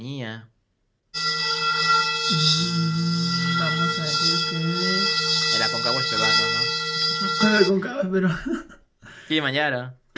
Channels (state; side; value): identical; both; correlation 1.00